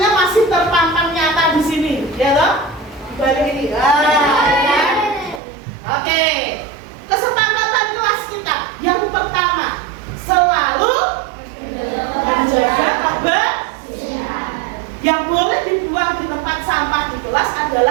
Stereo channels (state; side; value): drops out; left; at 5.4 s